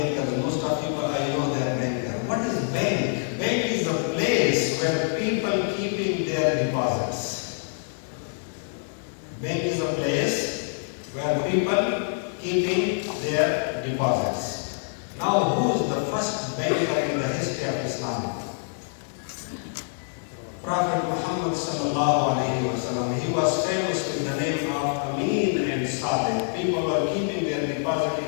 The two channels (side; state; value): right; silent; digital silence